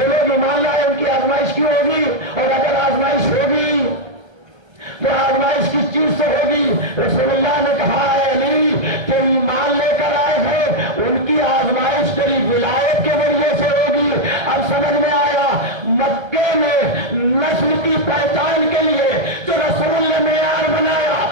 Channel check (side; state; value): left; late; 1.2 ms